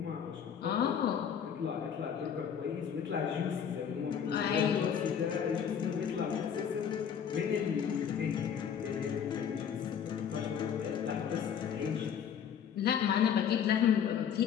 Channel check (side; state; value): right; quieter; 8.0 dB